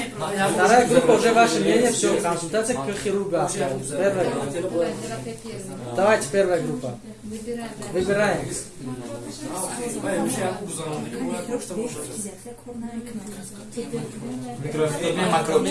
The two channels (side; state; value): both; identical; correlation 1.00